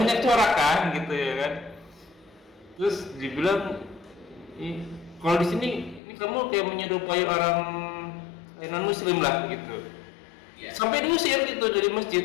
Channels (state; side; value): drops out; right; at 6.0 s